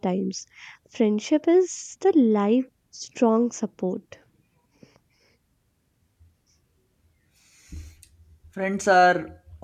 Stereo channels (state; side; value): identical; both; correlation 1.00